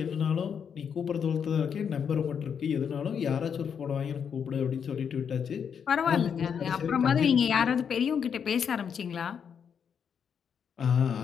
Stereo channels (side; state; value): right; quieter; 7.3 dB